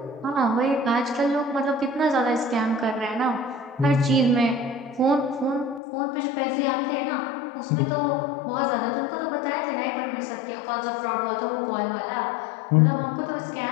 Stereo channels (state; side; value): drops out; right; at 5.8 s